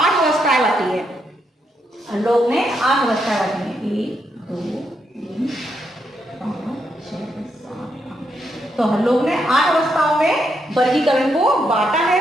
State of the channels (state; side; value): normal; both; correlation 0.79